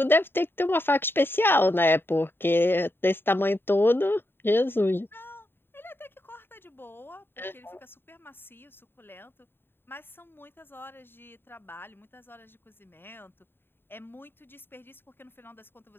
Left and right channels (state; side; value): late; right; 0.10 ms